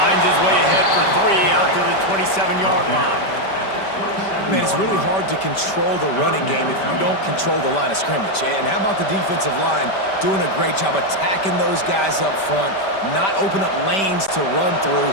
his way ahead for 3 out to the 27-yard line. Man, it's really hard to control the running game if you don't control the line of scrimmage. And how about the defensive line doing a great job attacking those guys up front, not open up lanes to run through.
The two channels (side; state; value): right; late; 5.1 ms